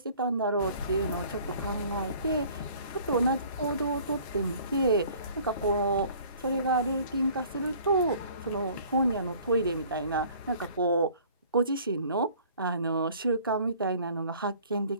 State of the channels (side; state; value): both; inverted; correlation -0.52